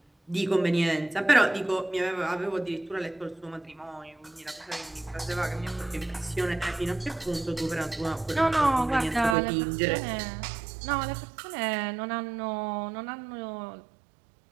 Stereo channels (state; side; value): drops out; left; at 9.3 s